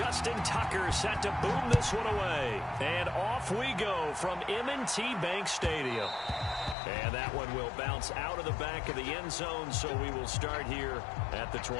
Tucker set to boom this one away. And off we go from M&T Bank Stadium. And that one will bounce out of the back of the end zone, so we will start here at the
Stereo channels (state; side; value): drops out; right; at 6.8 s